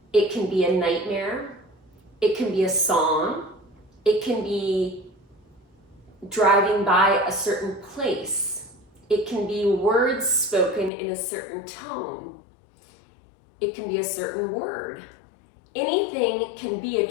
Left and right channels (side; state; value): right; drops out; at 10.9 s